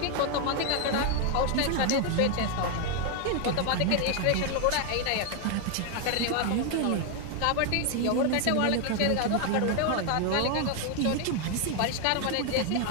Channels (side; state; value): both; different; correlation 0.01